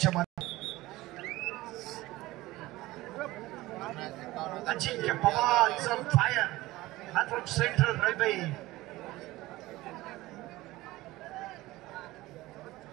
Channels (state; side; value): quieter; left; 18.4 dB